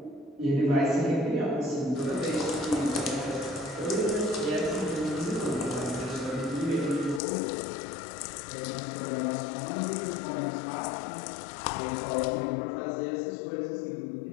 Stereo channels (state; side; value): drops out; right; at 7.2 s